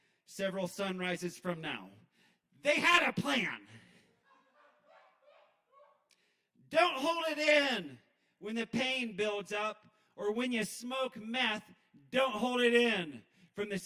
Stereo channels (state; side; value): identical; both; correlation 1.00